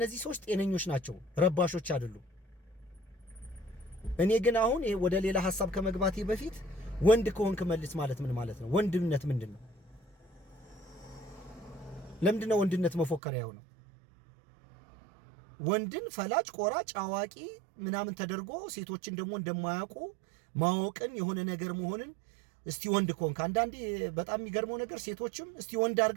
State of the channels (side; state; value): left; drops out; at 13.2 s